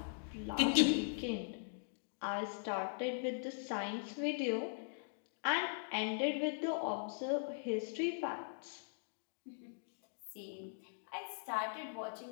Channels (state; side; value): silent; right; digital silence